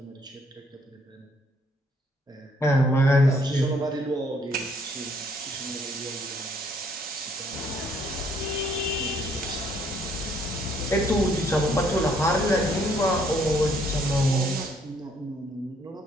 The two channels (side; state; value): both; normal; correlation 0.66